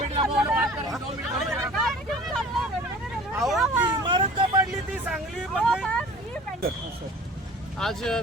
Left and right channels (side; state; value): both; normal; correlation 0.45